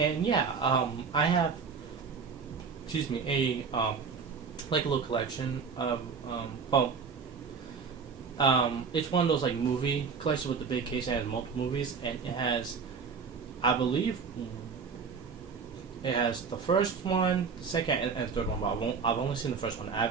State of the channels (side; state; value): left; quieter; 5.7 dB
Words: yeah, I have, a like a little collection of it's one of those like movie collections with the big case that has multiple movies, and it has, I believe, it has the first one, the second, and third one, but I've only seen the first one. I